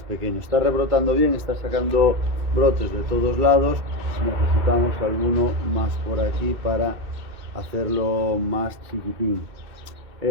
pequeño. Está rebrotando bien, está sacando brotes de todos lados, necesitamos alguno más por aquí para hacerlo más chiquitín.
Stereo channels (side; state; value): left; late; 2.6 ms